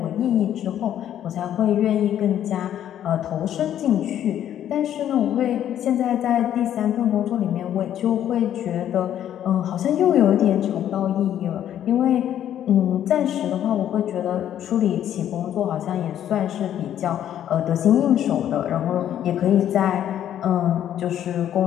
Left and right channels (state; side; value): quieter; right; 10.7 dB